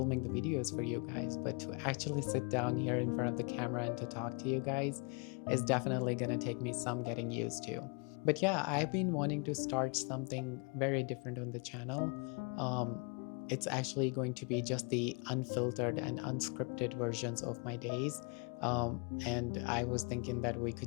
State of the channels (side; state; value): right; quieter; 35.0 dB